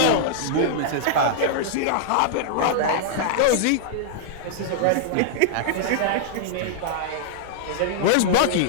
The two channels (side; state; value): both; different; correlation -0.01